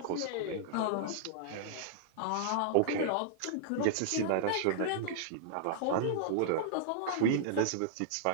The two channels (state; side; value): different; both; correlation -0.02